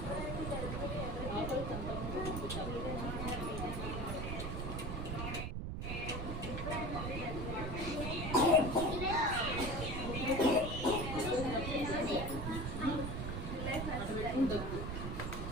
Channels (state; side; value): noise; right; rumble, 3 dB below the sound